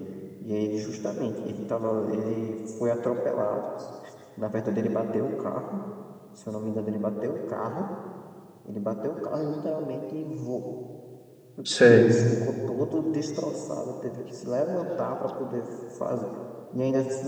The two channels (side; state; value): both; identical; correlation 1.00